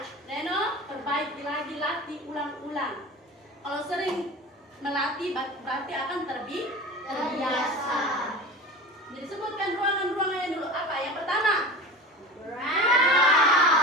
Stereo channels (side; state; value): both; normal; correlation 0.33